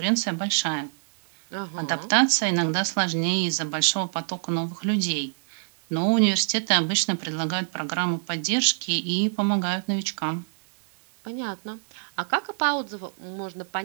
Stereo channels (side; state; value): left; silent; digital silence